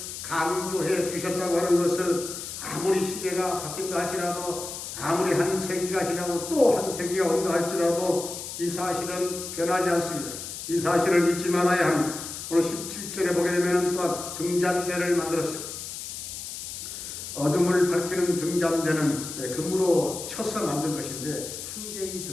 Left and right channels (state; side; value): noise; left; hiss, 8 dB below the sound